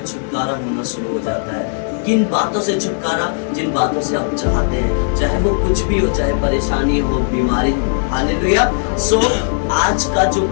छुटकारा होना शुरू हो जाता है। किन बातों से छुटकारा? जिन बातों से आप चाहते हैं, चाहे वो कुछ भी हो, चाहे परेशानी हो, बीमारी हो। हालेलुया। आज का जो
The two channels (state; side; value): silent; right; 68 dB below the other